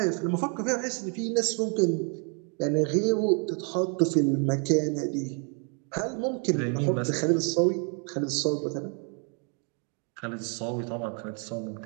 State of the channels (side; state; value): left; quieter; 38.5 dB